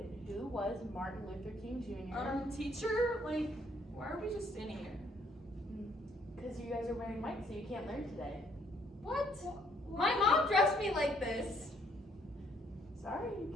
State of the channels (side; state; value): both; normal; correlation 0.66